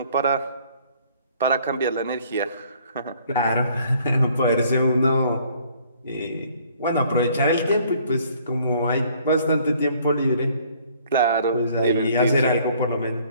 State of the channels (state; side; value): inverted; both; correlation -0.60